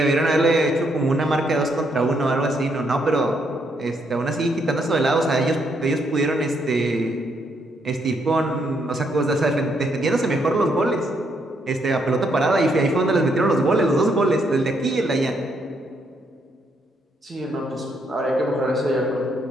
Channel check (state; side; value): normal; both; correlation 0.75